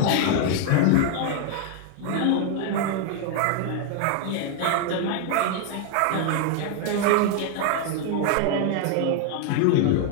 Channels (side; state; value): both; different; correlation 0.00